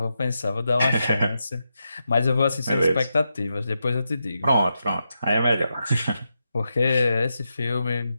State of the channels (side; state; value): both; inverted; correlation -0.87